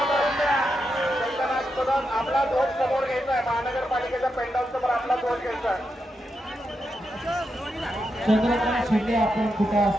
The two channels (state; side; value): normal; both; correlation 0.85